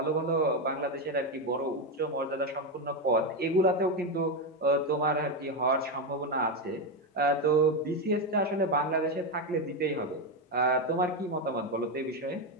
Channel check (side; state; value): both; normal; correlation 0.10